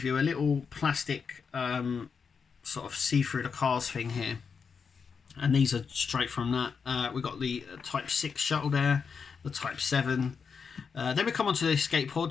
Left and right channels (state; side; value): quieter; right; 5.9 dB